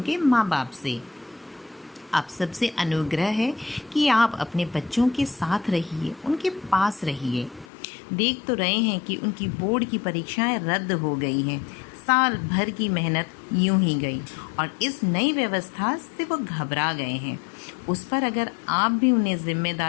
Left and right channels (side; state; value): right; drops out; at 7.7 s